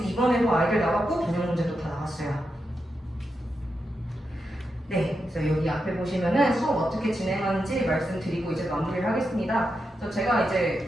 이번에도 아이들 나왔고 변형 문제도 다 나왔어요. 네, 그래서 여기 앞에 보시면은 수업 어떻게 진행하는지 말씀드리고 이제 마무리를 하겠습니다. 그래서 제가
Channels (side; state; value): both; normal; correlation 0.87